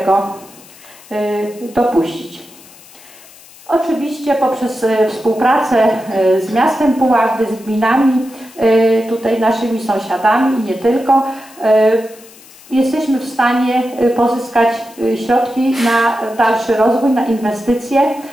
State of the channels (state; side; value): noise; left; hiss, 23 dB below the sound